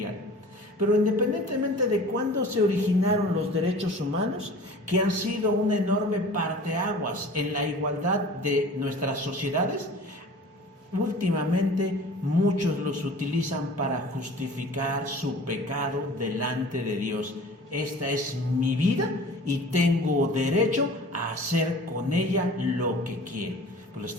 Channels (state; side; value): normal; both; correlation 0.43